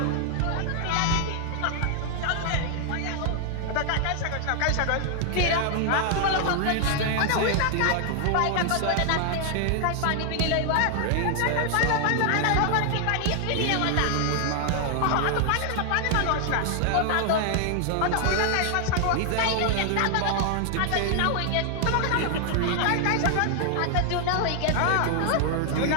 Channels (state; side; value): different; both; correlation 0.00